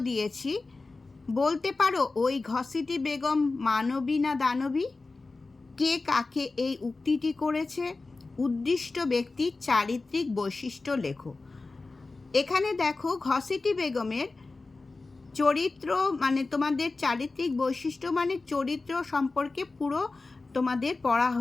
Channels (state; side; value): quieter; right; 3.6 dB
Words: দিয়েছি, বলতে পারো ওই ঘসিটি বেগম মানবী না দানবী? কে কাকে এই উক্তিটি করেছে? উদ্দিষ্ট ব্যক্তির চারিত্রিক বৈশিষ্ট্য লেখো। এখানে দেখো, ঘসিটি বেগমের চরিত্র মানে তোমাদের চারিত্রিক বৈশিষ্ট্য মানে চরিত্র সম্পর্কে পুরো তোমাদের পড়া